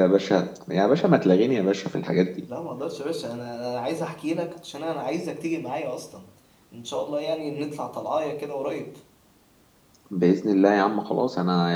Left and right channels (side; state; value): both; identical; correlation 1.00